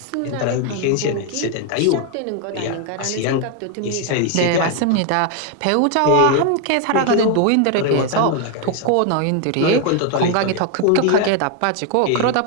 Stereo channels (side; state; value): both; different; correlation 0.01